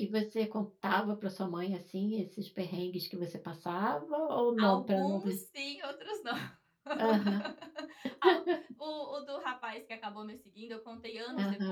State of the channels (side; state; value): both; identical; correlation 1.00